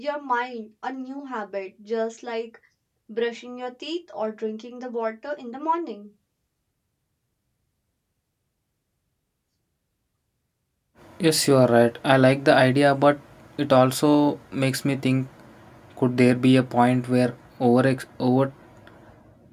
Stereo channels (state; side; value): identical; both; correlation 1.00